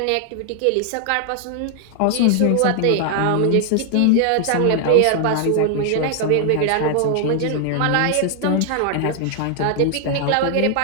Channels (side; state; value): both; different; correlation 0.00